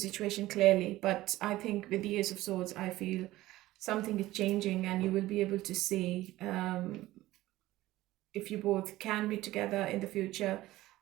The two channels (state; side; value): quieter; left; 16.7 dB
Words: clearly. But I think with the Ace of Swords, I feel something is changing, and you will be able to see if you both can be together in the future,